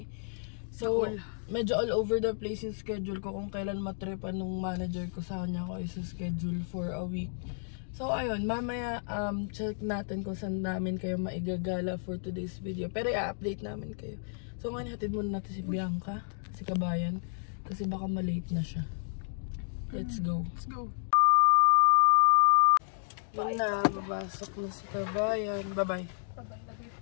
So, medyo all over the place yung schedule ko kung kailan matripan nung manager ko sa kanya ko isa-schedule for a week. So, ayun, mamaya check natin kung saan namin kayo maigagala for today's video. Pero i-update namin kayo. So, ngayon hatid muna natin si Bianca, si kabayan, kasi baka malate na siya. Let's go. Let's go. Yun na, babasok na si kabayan. Bye-bye.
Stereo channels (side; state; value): right; silent; digital silence